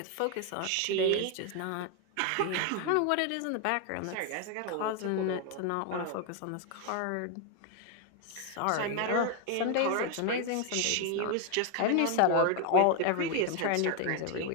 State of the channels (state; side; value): different; both; correlation 0.00